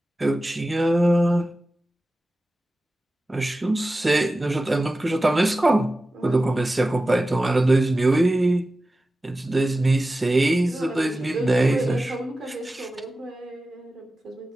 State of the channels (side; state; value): both; normal; correlation 0.95